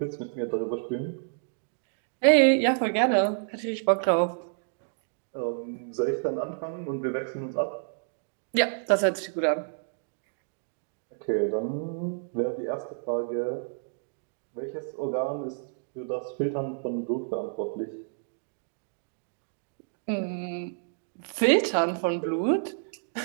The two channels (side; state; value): left; silent; digital silence